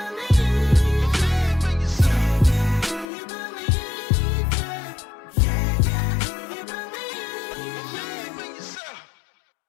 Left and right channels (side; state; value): right; drops out; at 3.1 s